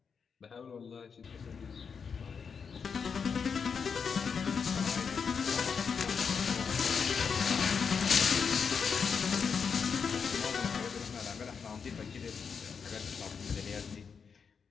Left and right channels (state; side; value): quieter; right; 6.1 dB